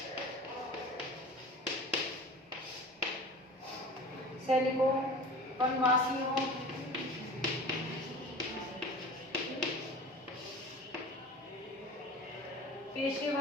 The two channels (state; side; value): normal; both; correlation 0.37